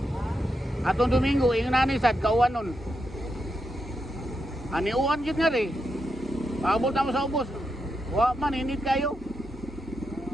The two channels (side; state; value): both; normal; correlation 0.85